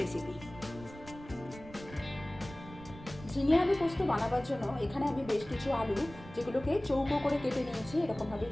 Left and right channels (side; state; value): right; noise; rumble, 17 dB below the sound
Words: রেসিপি। ঝিঙে আলু পোস্ত বানাবার জন্য এখানে আমি বেশ কিছু আলু, যেগুলোকে চৌকো করে কেটে নিয়েছি, এরকমভাবে